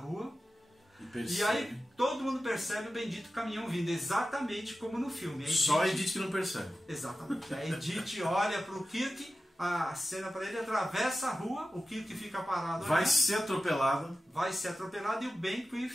e aí todo mundo percebe o bendito caminhão vindo, exatamente como no filme. Só a Edith que não percebe. Exatamente. A Edith olha para o Kirk, a cena para ele, atravessa a rua, o Kirk fica parado. Vai ser atropelado. E o Benquith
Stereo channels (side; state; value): both; normal; correlation 0.94